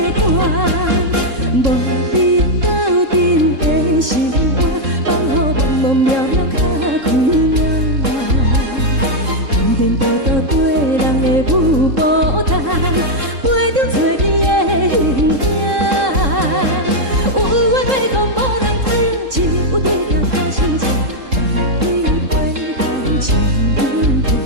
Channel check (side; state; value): left; late; 3.7 ms